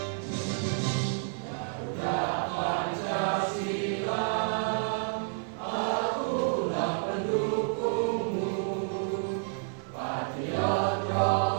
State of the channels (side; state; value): left; silent; 58 dB below the other